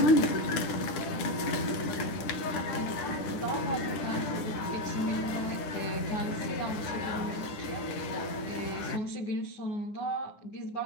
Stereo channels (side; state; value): right; late; 9.7 ms